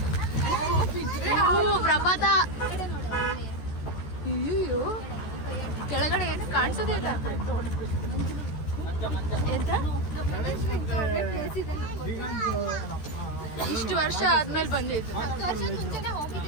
ಪ್ರಪಾತ ಕಡೆ ನೋಡು ಅಲ್ಲಿ. ಅಯ್ಯೋ ಕೆಳಗಡೆ ಏನು ಕಾಣಿಸೋದೇ ಇಲ್ಲ ಎಂತ ಪ್ಲೇಸ್ ಇದೆ ಇಷ್ಟು ವರ್ಷ ಆದ್ಮೇಲೆ ಬಂದಿದ್ದು 10 ವರ್ಷದ ಮುಂಚೆನೆ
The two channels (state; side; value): late; right; 14 ms